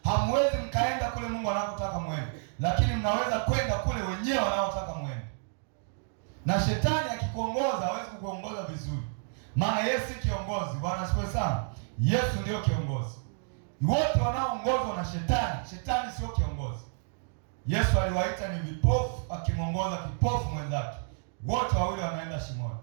Hamwezi mkaenda kule Mungu anakotaka mwende, lakini mnaweza kwenda kule wenyewe wanaotaka mwende. Na shetani akikuongoza hawezi kukuongoza vizuri, maana Yesu si kiongozi. Bwana asifiwe sana. Yesu ndio kiongozi. Wote wanaoongozwa na shetani, shetani sio kiongozi. Yesu aliwaita ni vipofu, akimwongoza kipofu mwenzake, wote wawili wanaenda shimoni.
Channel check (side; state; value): left; silent; 58 dB below the other